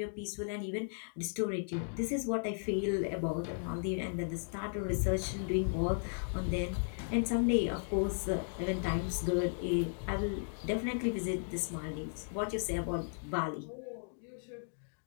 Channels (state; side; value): silent; right; digital silence